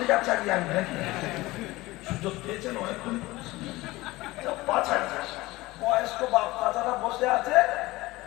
চালিয়ে আনবে নাকি? সুযোগ পেয়েছেন অনেকক্ষণ, 5,000 বয়স্ক বাপ চাচারা বসে আছে,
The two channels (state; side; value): quieter; right; 19.7 dB